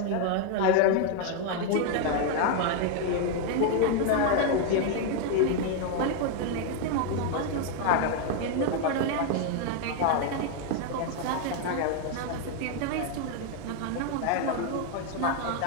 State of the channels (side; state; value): both; different; correlation 0.00